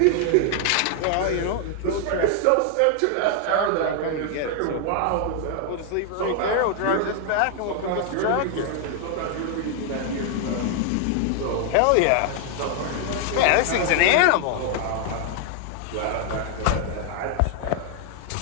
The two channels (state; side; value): different; both; correlation 0.00